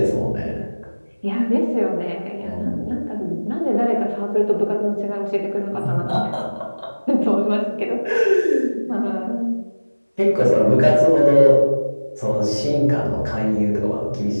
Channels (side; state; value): both; inverted; correlation -1.00